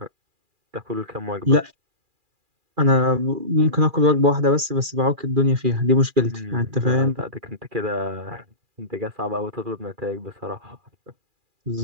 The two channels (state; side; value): late; left; 2.4 ms